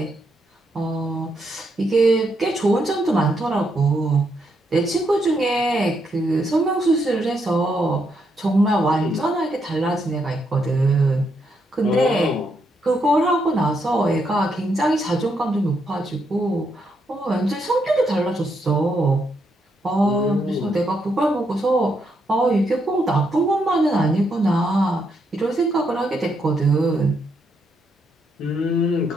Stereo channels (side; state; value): both; normal; correlation 0.78